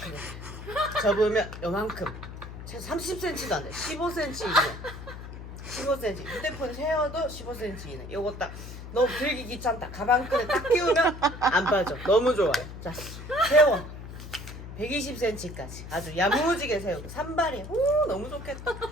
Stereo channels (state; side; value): noise; left; hum, 11 dB below the sound